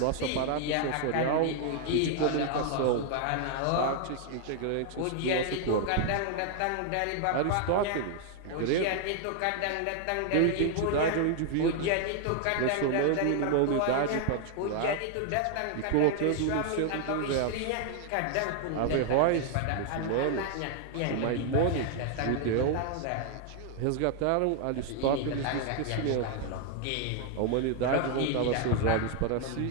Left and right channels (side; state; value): both; different; correlation 0.00